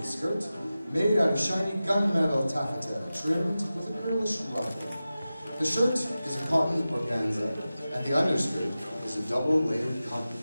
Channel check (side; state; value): both; inverted; correlation -0.95